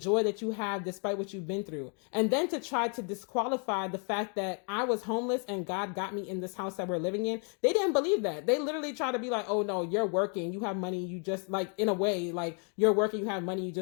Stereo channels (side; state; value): right; quieter; 39.0 dB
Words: that you have despite what you've been through. And then to try to disqualify the fact that I was homeless and God got me in this house that we're living in. They didn't believe that. They literally try to be like, oh no, you're working, you have money, you just, like, in a way, like, you're working, you have money, you